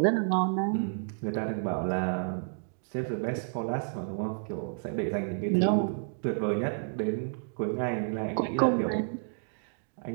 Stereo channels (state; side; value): silent; left; digital silence